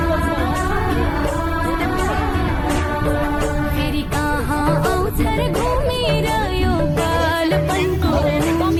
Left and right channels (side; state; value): both; identical; correlation 1.00